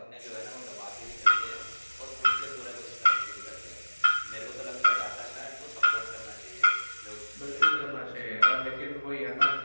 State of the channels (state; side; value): inverted; both; correlation -1.00